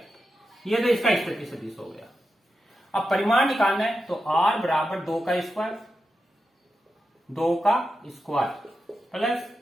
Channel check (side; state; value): both; normal; correlation 0.89